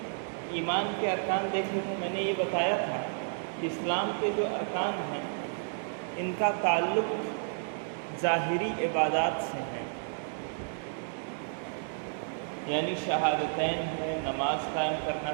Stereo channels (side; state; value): left; silent; digital silence